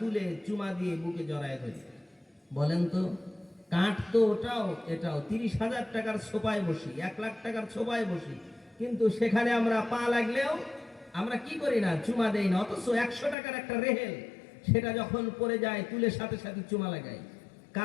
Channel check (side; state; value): right; drops out; at 13.4 s